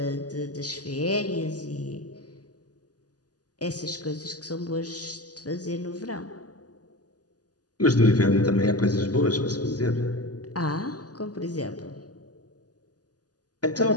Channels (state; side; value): late; right; 0.68 ms